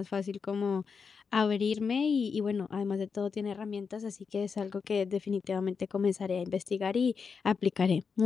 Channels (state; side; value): quieter; right; 5.6 dB